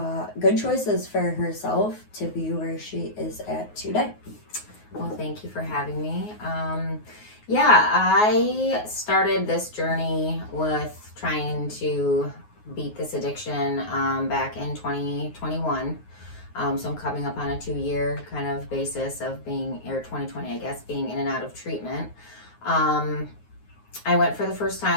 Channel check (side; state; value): right; late; 9.5 ms